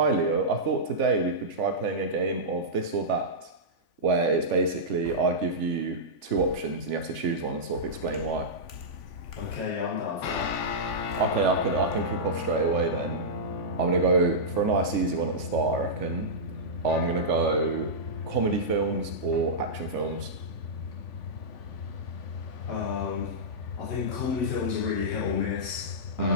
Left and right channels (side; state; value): right; late; 3.5 ms